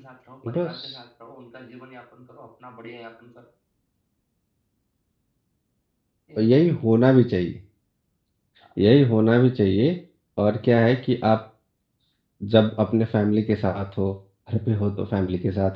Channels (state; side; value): identical; both; correlation 1.00